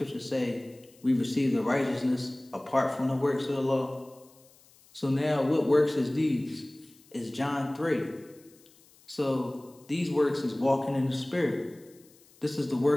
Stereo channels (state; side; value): noise; left; hiss, 28 dB below the sound